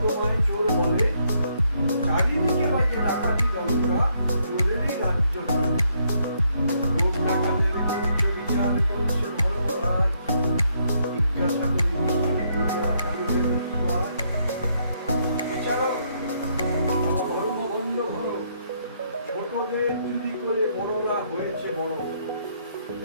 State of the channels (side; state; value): both; inverted; correlation -0.73